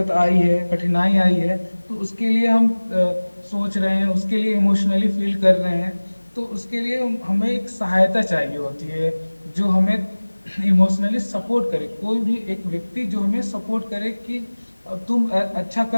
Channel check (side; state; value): both; inverted; correlation -1.00